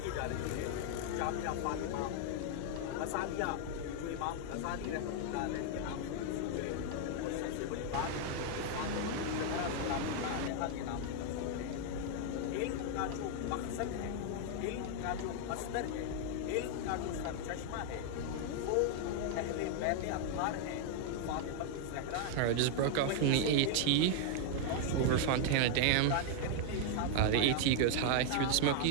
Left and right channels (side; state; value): both; different; correlation 0.00